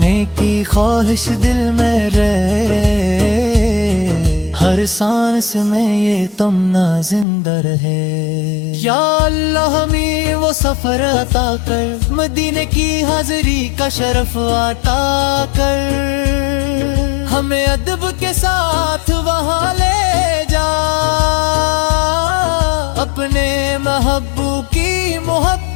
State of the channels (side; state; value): right; drops out; at 7.2 s